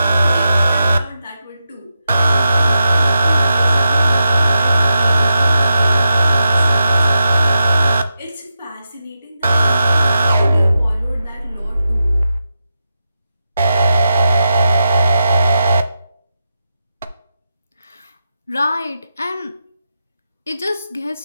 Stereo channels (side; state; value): both; inverted; correlation -0.88